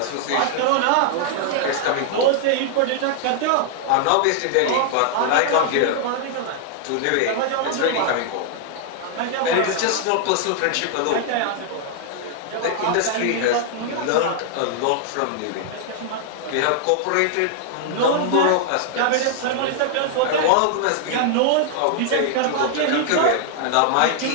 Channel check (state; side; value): different; both; correlation -0.01